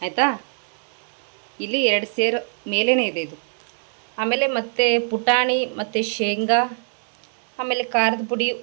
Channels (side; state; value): left; silent; digital silence